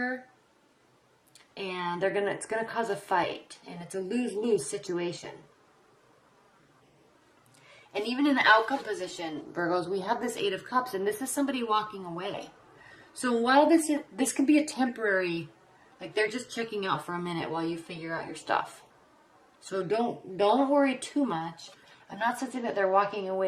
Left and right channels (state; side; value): identical; both; correlation 1.00